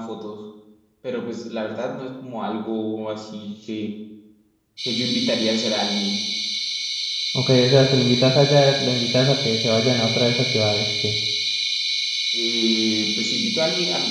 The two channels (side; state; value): both; identical; correlation 1.00